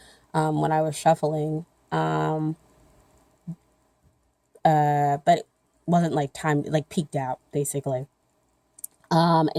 when I was shuffling. But it wasn't like timed, like peaked out basically. And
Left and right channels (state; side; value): identical; both; correlation 1.00